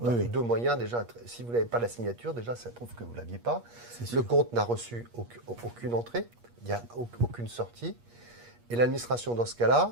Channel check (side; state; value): left; late; 8.4 ms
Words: oui. Deux moyens, déjà, si vous n'avez pas la signature, déjà, ça prouve que vous ne l'aviez pas. Le compte n'a reçu aucune entrée, il n'y a aucune sortie. Et l'administration, dans ce